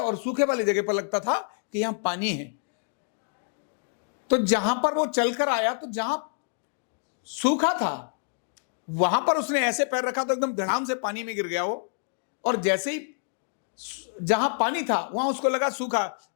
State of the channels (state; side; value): silent; right; digital silence